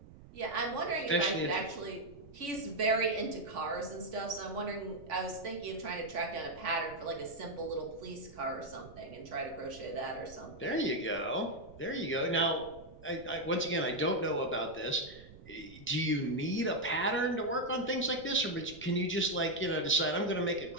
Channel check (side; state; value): right; noise; rumble, 19 dB below the sound